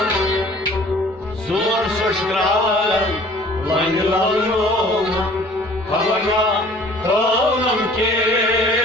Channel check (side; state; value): right; noise; hum, 29 dB below the sound